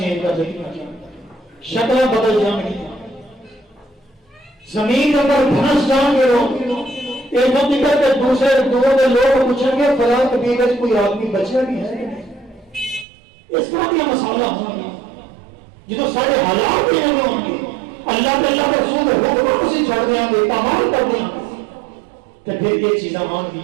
کر دی، شکلیں بدل جان گی، زمین کے اندر دھنس جان گے لوگ، ایک دم نکل کے دوسرے دور کے لوگ پوچھیں گے فلاں قبیلے سے کوئی آدمی بچا بھی ہے کہ نہیں؟ اس طرح کی مسئلہ ہوں گے جو سارے حالات بھی ہوں گے، اللہ کے اللہ کے رسول حکم سے چھوڑ دیں گے، پامال کر دیں گے، تو پھر یہ چیزیں مان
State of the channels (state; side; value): drops out; left; at 13.1 s